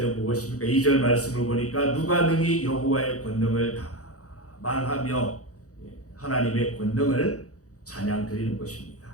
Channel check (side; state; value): right; late; 0.66 ms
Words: 무엇입니까? 2절 말씀을 보니까 누가 능히 여호와의 권능을 다 말하며 하나님의 권능을 찬양 드리는 것입니다.